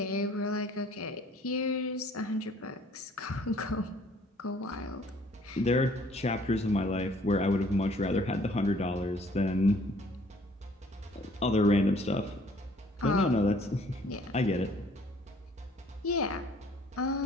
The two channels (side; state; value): both; normal; correlation 0.58